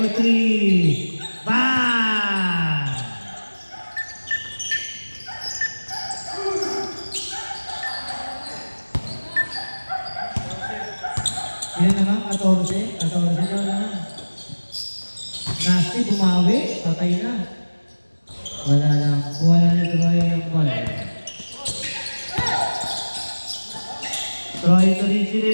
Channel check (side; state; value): both; inverted; correlation -1.00